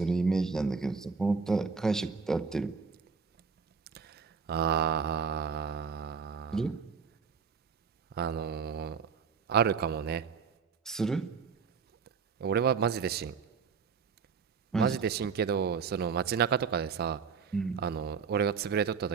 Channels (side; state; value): left; quieter; 5.7 dB